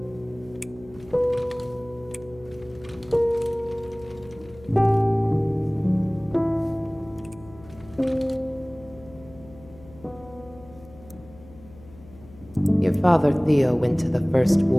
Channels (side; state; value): left; noise; hum, 21 dB below the sound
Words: Your father, Theo, went to the first